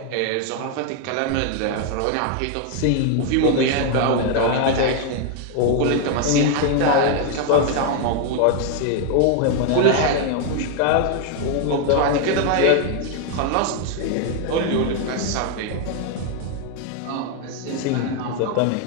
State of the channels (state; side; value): different; both; correlation 0.01